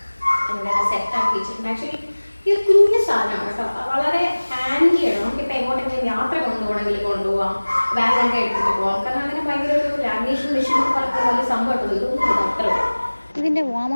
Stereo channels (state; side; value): inverted; both; correlation -1.00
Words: എല്ലാം സെറ്റാക്കി വെച്ചിട്ടുണ്ട്. ആക്ച്വലി ഈ ഒരു കുഞ്ഞു സാധനമാണ് കേട്ടോ. വളരെ ഹാൻഡിയാണ്. നമുക്കിപ്പോൾ എങ്ങോട്ടെങ്കിലും യാത്ര കൊണ്ടുപോകാം, ബാഗൊക്കെ എടുത്തിട്ട് പോകാം. കാരണം അങ്ങനെ ഭയങ്കര ഒരു ലാമിനേഷൻ മെഷീൻ എന്ന് പറയുന്ന വലിയ സംഭവമായിട്ടുള്ളൂ. ഇതൊന്നും അത്ര. ഇതിൻ്റെ വാം